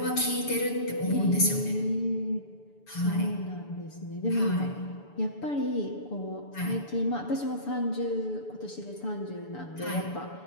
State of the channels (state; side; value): late; right; 6.9 ms